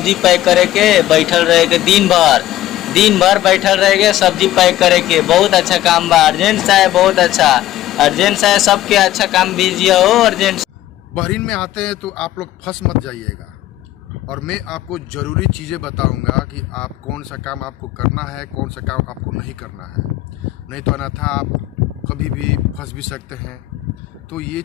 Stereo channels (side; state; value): right; quieter; 14.2 dB